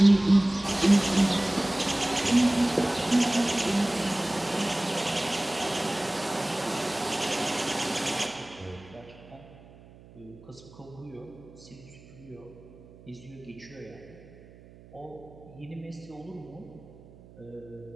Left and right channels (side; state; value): right; noise; hum, 22 dB below the sound